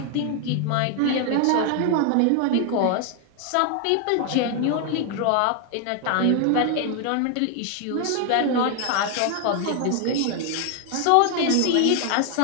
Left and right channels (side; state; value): both; different; correlation 0.00